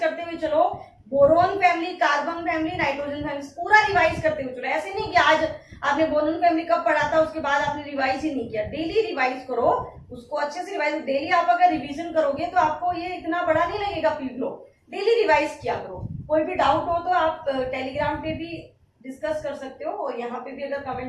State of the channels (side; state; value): both; identical; correlation 1.00